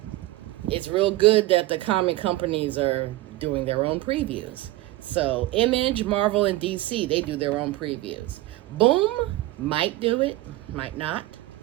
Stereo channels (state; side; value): quieter; left; 17.4 dB